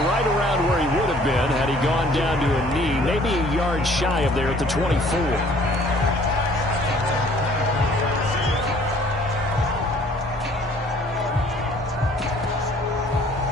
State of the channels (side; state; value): both; normal; correlation 0.56